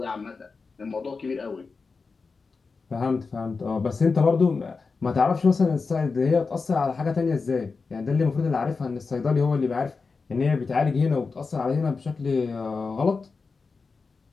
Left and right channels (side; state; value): right; quieter; 4.5 dB